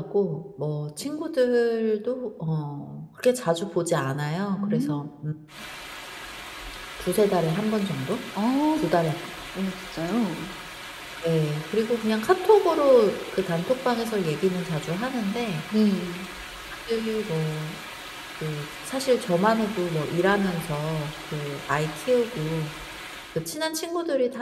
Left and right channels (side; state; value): both; identical; correlation 1.00